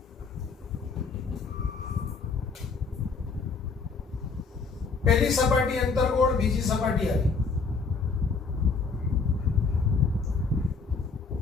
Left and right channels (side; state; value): right; quieter; 4.7 dB